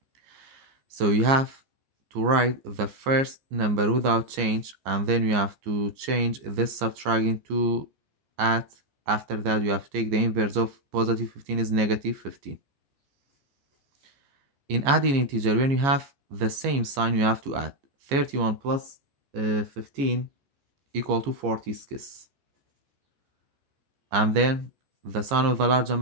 So you have to write the first number without change, and then you have to change this subtract into add. After that, you have to take the inverse of positive 15 is negative 15. In adding integer, when you have the same sign, you have to add. 31 plus 15 equal to 46. And then the sign of the large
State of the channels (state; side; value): late; left; 15 ms